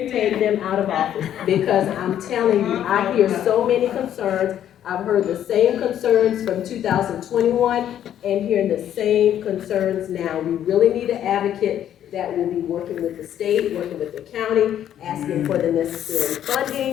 them out of office. Because I'm telling you, I hear so many concerns. I've heard the same concerns from 2021 and hearing the same concerns now. We really need an advocate that will be working with the state, working with the county, asking for the necessary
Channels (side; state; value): right; quieter; 10.6 dB